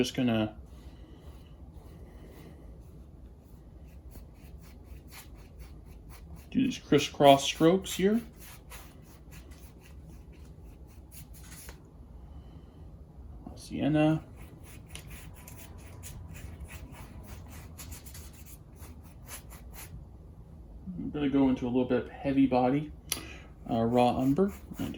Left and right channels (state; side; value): identical; both; correlation 1.00